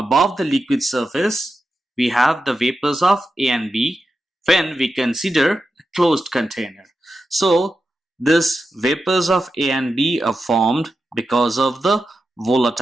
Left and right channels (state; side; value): normal; both; correlation 0.90